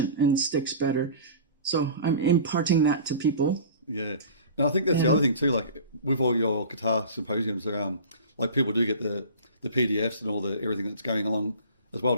and sticks better. So I'm imparting that to people. Yeah. And I think that's the other thing too, like with all your guitar symposiums around, like people do get the PDFs and all the everything that's going along as well,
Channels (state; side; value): inverted; both; correlation -0.39